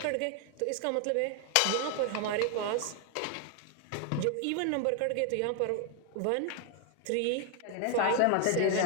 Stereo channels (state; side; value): different; both; correlation 0.00